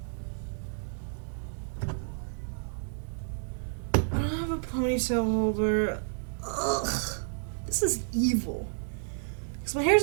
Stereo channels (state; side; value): silent; left; digital silence